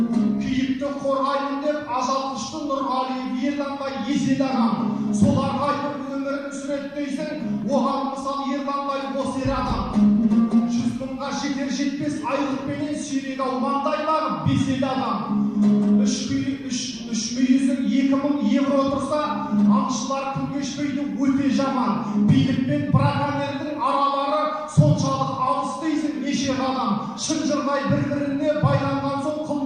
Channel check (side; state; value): both; identical; correlation 1.00